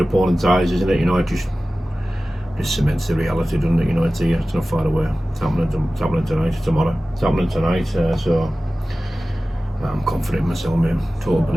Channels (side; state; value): both; normal; correlation 0.96